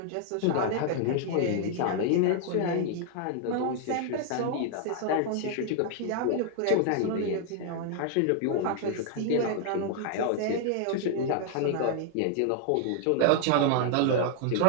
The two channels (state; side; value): different; both; correlation 0.00